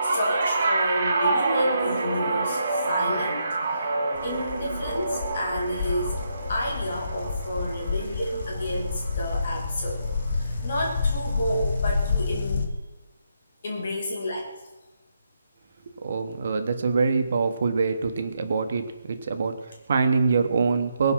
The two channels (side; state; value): both; inverted; correlation -0.78